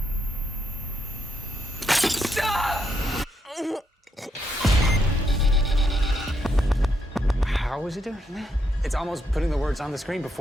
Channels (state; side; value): normal; both; correlation 0.78